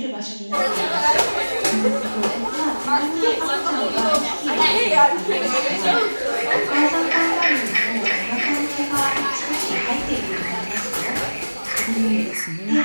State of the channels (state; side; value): inverted; both; correlation -1.00